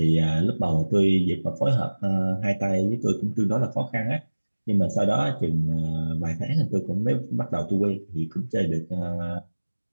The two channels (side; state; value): both; inverted; correlation -1.00